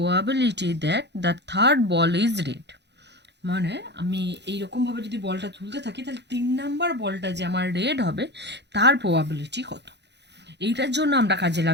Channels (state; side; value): late; left; 0.50 ms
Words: that the third ball is red, মানে আমি এইরকমভাবে যদি বলটা তুলতে থাকি তাহলে 3 নাম্বার বলটা যে আমার রেড হবে তার প্রবাবিলিটি কত। এইটার জন্য আমরা কাজে